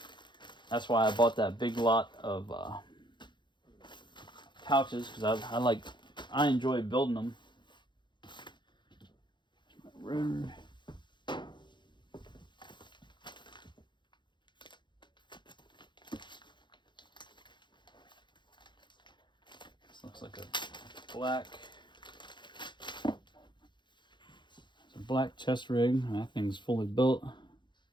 that's why I bought that big lot of pouches, because I enjoy building them. Rotor. This looks like a black chest rig. That thing's fully built.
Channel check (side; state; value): right; late; 0.22 ms